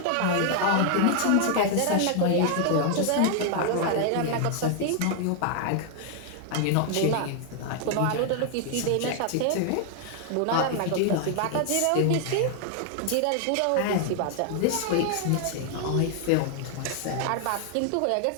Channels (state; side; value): different; both; correlation 0.00